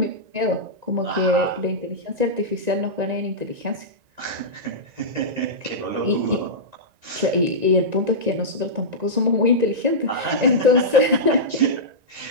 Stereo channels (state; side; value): late; left; 1.9 ms